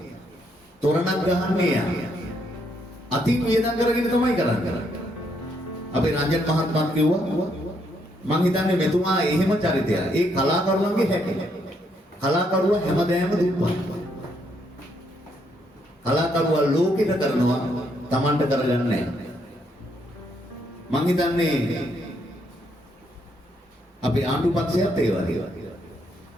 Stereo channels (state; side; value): normal; both; correlation 0.74